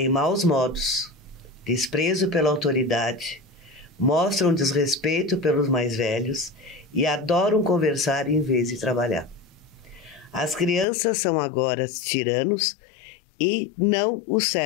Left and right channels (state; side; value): drops out; right; at 10.9 s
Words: maus modos, desprezo pela autoridade, mostram desrespeito pelos mais velhos e adoram conversar em vez de trabalhar. As crianças são agora tiranos e não os